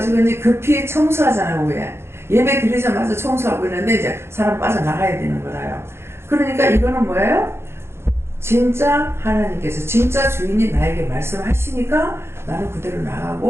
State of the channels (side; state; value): left; late; 0.12 ms